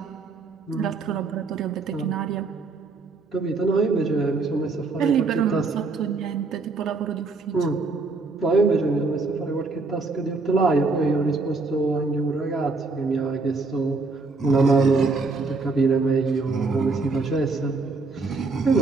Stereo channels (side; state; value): left; quieter; 3.9 dB